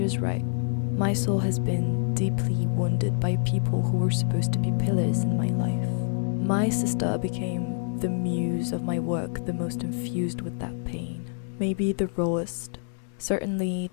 was right. My soul has been deeply wounded by people who were supposed to be pillars in my life. My sister became the muse of my work, the most infused with that pain. Maybe the rawest, certainly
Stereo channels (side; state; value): right; silent; digital silence